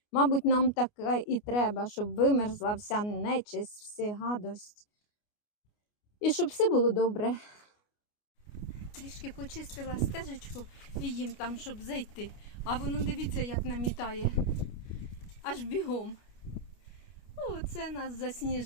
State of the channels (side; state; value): right; late; 29 ms